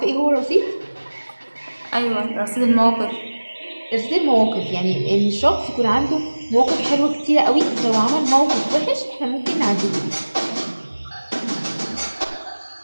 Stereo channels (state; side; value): inverted; both; correlation -1.00